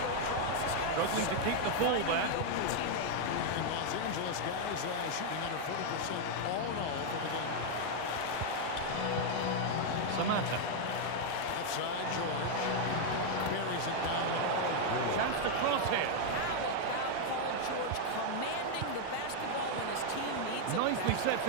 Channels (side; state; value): both; different; correlation 0.00